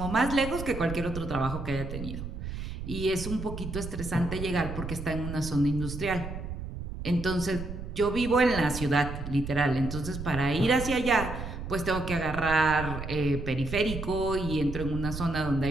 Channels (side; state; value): right; noise; rumble, 7 dB below the sound